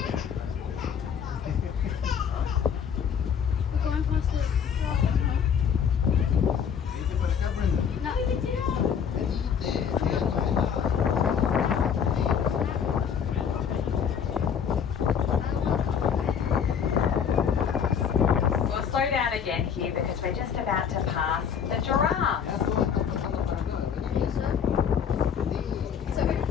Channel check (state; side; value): quieter; right; 7.5 dB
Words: We're going past the rock. Vete para acá, Brenda. No. Venite, síganos. We'll slow down again here because we're just about to pass the giraffes.